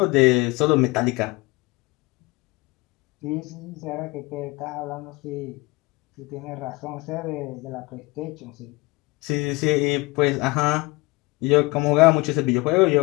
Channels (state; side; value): quieter; right; 23.6 dB